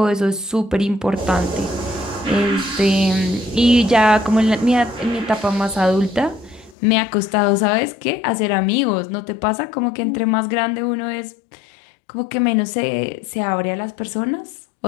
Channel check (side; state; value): right; drops out; at 6.8 s